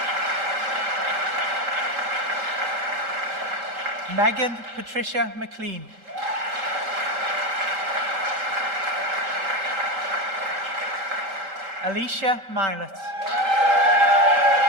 Megan Patricia McLean. Alicia Milet.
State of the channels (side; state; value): left; late; 3.8 ms